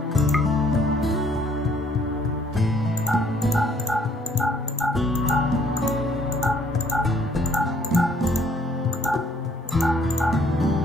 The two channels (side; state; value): both; normal; correlation 0.63